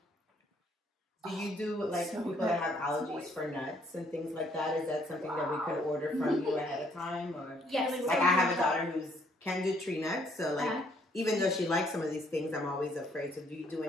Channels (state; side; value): normal; both; correlation 0.66